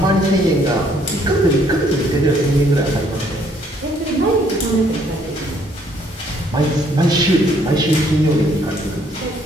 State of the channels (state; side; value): normal; both; correlation 0.65